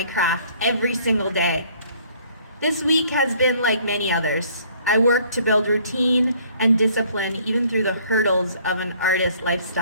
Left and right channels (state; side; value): inverted; both; correlation -0.59